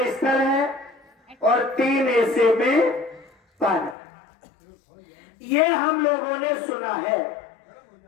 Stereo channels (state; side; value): drops out; right; at 4.0 s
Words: स्थल है और 3 हिस्से में पानी। ये हम लोगों ने सुना है।